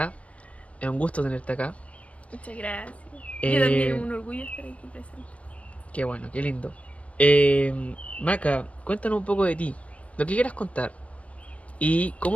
Es un gusto tenerte acá. Muchas gracias. Yo también, Eh, un orgullo estar aquí presente. Qué bueno, qué lindo. Maca, cuéntanos un poco de ti, lo que quieras contar. ¿Y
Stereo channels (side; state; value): right; late; 0.064 ms